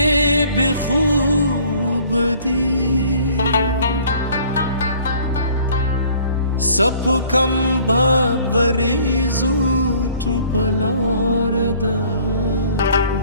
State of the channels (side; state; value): both; inverted; correlation -0.54